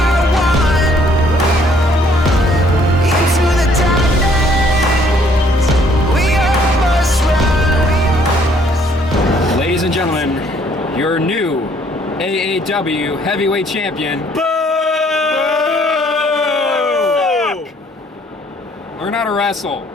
one. Into the darkness, we almost run. Ladies and gentlemen, your new AAW heavyweight champion. Learn how to wrestle.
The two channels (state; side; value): normal; both; correlation 0.63